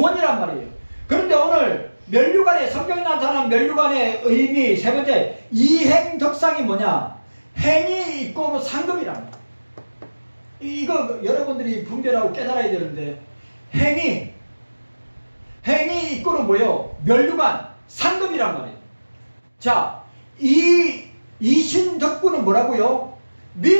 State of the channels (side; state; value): both; inverted; correlation -1.00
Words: 말이에요. 그런데 오늘 면류관의 성경에 나타난 면류관의 의미 세 번째 이행덕상이 뭐냐? 행이 이꼬르 상급이란 말이에요. 이거 여러분들이 분별하고 깨달아야 되는데 행이 이꼬르 뭐예요? 면류관 상급이란 말이에요. 자, 이신덕구는 뭐라고요?